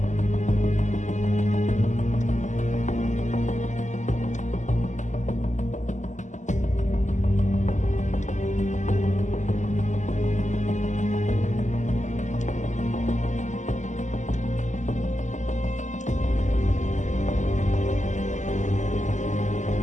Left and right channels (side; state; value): right; late; 0.35 ms